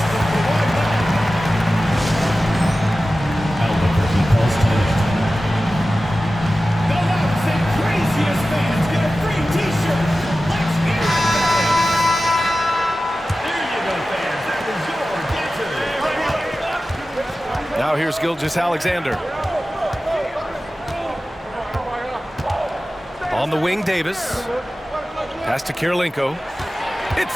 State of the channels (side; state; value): both; normal; correlation 0.95